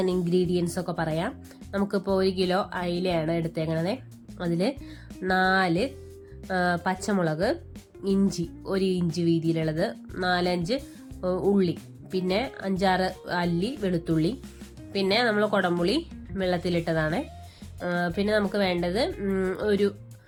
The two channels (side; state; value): both; identical; correlation 1.00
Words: ഇൻഗ്രീഡിയൻസ് ഒക്കെ പറയാം. നമുക്കിപ്പോൾ 1 കിലോ അയിലയാണ് എടുത്തേക്കണത്. അതിൽ 4 പച്ചമുളക്, ഇഞ്ചി 1 ഇഞ്ച് വീതിയിലുള്ളത്, 4-5 ഉള്ളി, പിന്നെ 5-6 അല്ലി വെളുത്തുള്ളി, പിന്നെ നമ്മൾ കുടംപുളി വെള്ളത്തിലിട്ടതാണ്. പിന്നെ നമുക്ക് വേണ്ടത് ഒരു